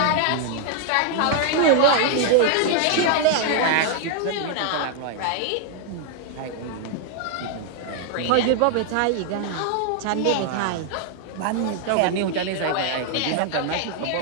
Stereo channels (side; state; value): both; different; correlation 0.00